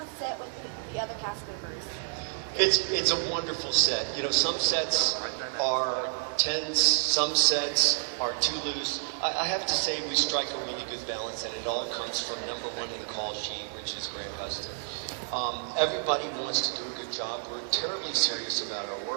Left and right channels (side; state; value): left; silent; digital silence